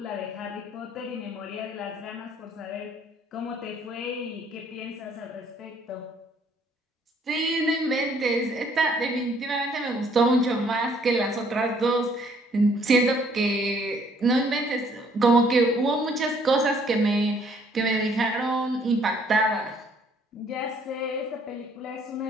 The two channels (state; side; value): normal; both; correlation 0.63